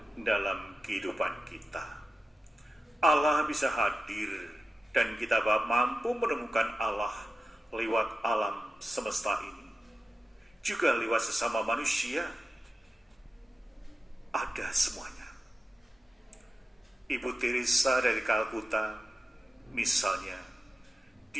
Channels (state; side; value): normal; both; correlation 0.92